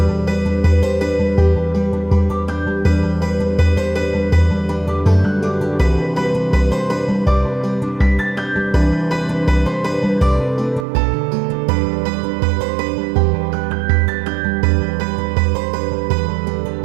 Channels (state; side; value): drops out; left; at 10.9 s